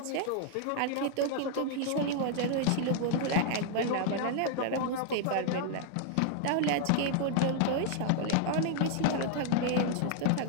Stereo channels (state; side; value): different; both; correlation 0.00